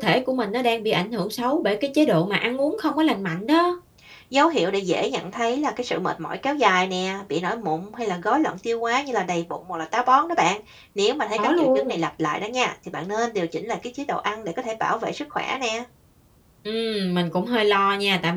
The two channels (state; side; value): identical; both; correlation 1.00